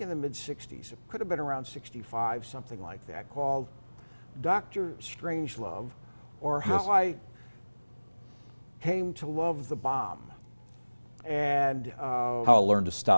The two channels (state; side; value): inverted; both; correlation -1.00